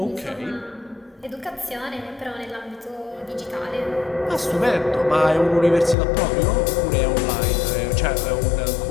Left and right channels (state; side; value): drops out; right; at 6.0 s